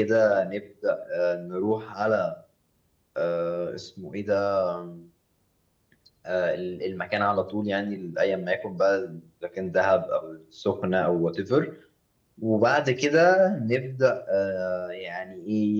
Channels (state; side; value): identical; both; correlation 1.00